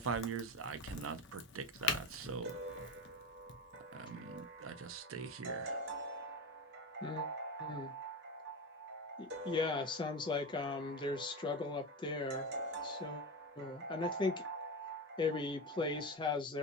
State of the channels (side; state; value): both; normal; correlation 0.21